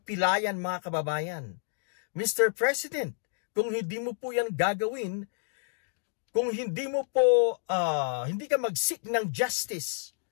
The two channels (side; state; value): right; silent; digital silence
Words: mga kababayan. Mr. President, kung hindi mo po yan gagawin, kung hindi mo po, hindi ka mag-seek ng justice